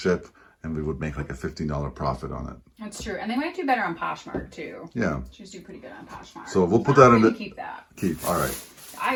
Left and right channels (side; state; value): both; identical; correlation 1.00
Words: and we would make like a $15 profit on it. That's true, and they might do better on Poshmark too. Yeah, shoes do pretty good on Poshmark. So we'll put that in. Keep that. Keep. All right.